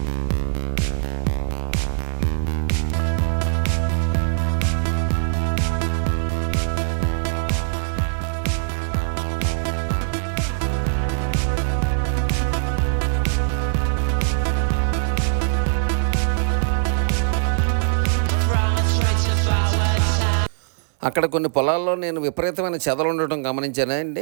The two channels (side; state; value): left; silent; 58 dB below the other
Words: అక్కడ కొన్ని పొలాల్లో నేను విపరీతమైన చెదలు ఉండటం గమనించానండి.